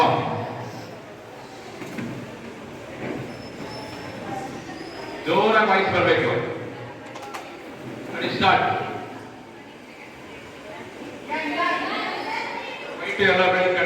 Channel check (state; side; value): identical; both; correlation 1.00